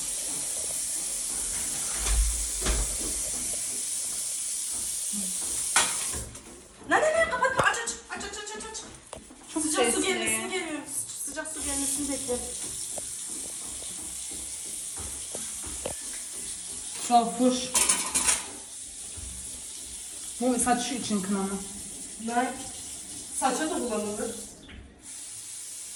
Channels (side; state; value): both; identical; correlation 1.00